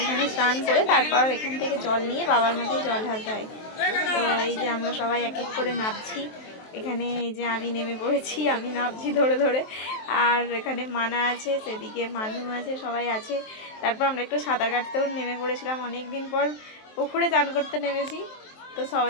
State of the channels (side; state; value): right; late; 23 ms